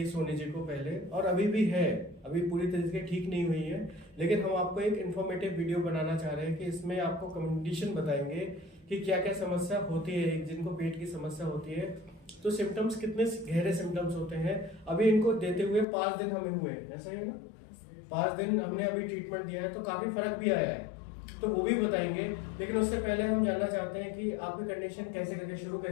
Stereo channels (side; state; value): right; drops out; at 15.9 s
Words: सोनी जी को पहले और अभी भी है, अभी पूरी तरीके से ठीक नहीं हुई है, लेकिन हम आपको एक इन्फॉर्मेटिव वीडियो बनाना चाह रहे हैं कि इसमें आपको कंडीशन बताएंगे कि क्या क्या समस्या होती है। जिनको पेट की समस्या होती है तो सिम्टम्स कितने गहरे सिम्टम्स होते हैं। अभी इनको देते हुए 5 दिन हमें हुए हैं, ऐसा ही है ना? 5 दिन हमने अभी ट्रीटमेंट दिया है तो काफी फर्क भी आया है, तो वो भी बताएंगे। लेकिन उससे पहले हम जानना चाहते हैं कि आपकी कंडीशन कैसे करके शुरू